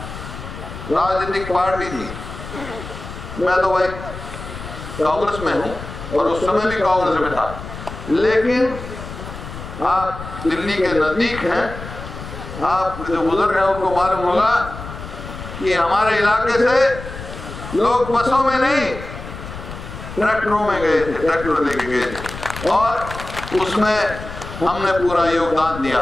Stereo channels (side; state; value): left; noise; rumble, 11 dB below the sound